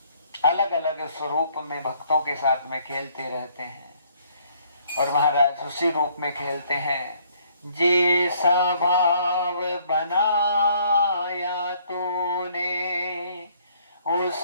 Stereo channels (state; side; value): inverted; both; correlation -0.64